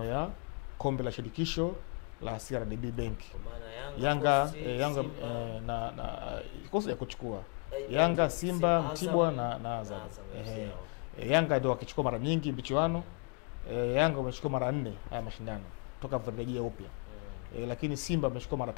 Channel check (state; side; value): quieter; right; 32.9 dB